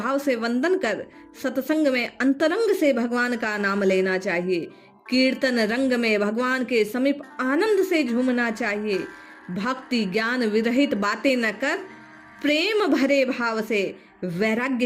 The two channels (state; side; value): identical; both; correlation 1.00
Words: से वंदन कर सत्संग में अंतरंग से भगवान का नाम लेना चाहिए। कीर्तन रंग में भगवान के समीप आनंद से झूमना चाहिए। भक्ति ज्ञान विरहित बातें न कर प्रेम भरे भाव से वैराग्य